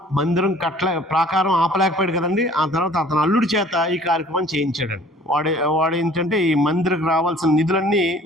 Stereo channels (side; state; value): both; normal; correlation 0.52